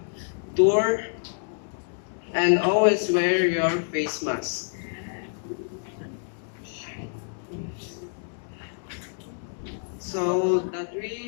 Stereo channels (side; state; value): right; silent; digital silence